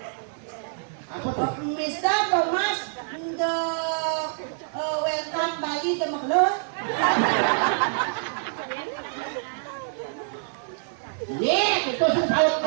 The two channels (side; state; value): left; silent; 61 dB below the other